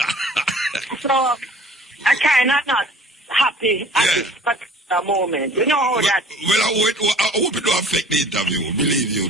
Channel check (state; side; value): normal; both; correlation 0.49